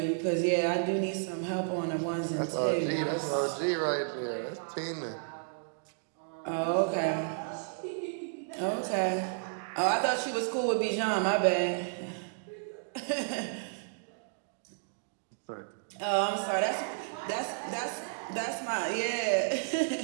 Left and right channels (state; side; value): silent; left; digital silence